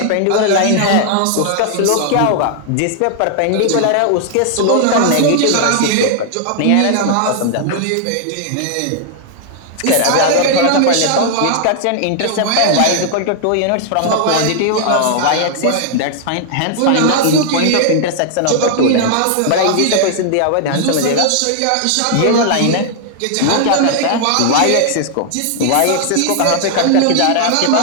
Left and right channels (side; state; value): both; different; correlation 0.00